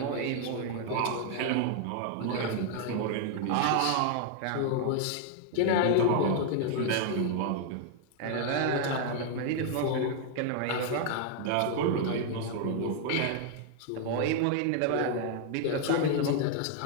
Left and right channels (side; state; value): both; different; correlation 0.00